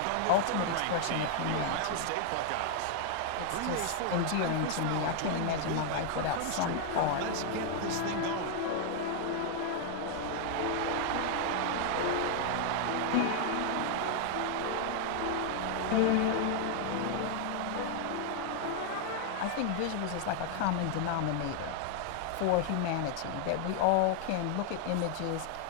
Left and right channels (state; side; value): different; both; correlation 0.00